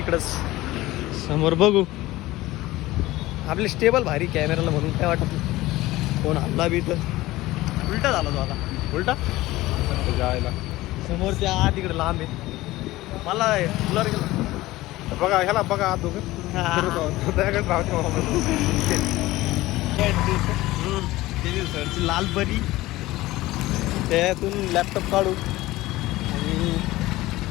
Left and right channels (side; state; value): right; quieter; 17.9 dB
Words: समोर बघू. आपले स्टेबल भारी कॅमेराला म्हणून काय वाटत नाही. कोण हल्ला बी तर उलटा झाला तो आता. उलटा जायला समोर त्या आत तिकडे लांब आहे. मला ब्लर गेला बघा ह्याला बघा आत दोघं सरची लाल परी त्यातून लॅपटॉप काढू आणि